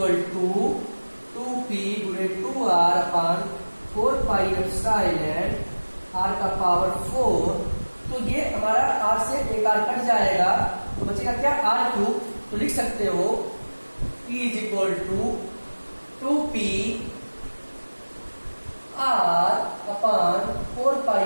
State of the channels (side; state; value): both; inverted; correlation -1.00